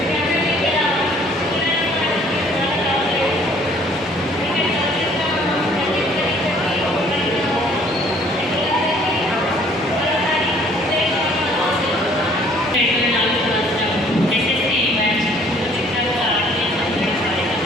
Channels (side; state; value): both; normal; correlation 0.58